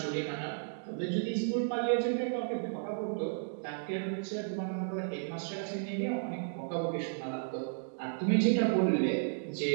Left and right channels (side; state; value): left; silent; digital silence